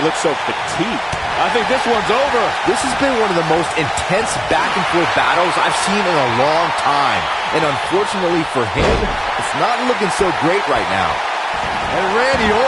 looked so fatigued. I think this one's over. This has been one of the most intense back-and-forth battles I've seen in a long time. And unfortunately for him, it's not looking so great right now. And Randy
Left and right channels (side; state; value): both; identical; correlation 1.00